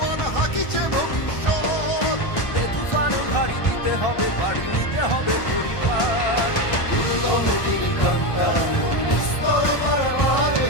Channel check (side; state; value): right; late; 1.3 ms